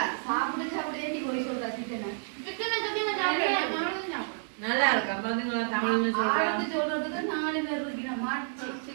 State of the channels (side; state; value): left; silent; 58 dB below the other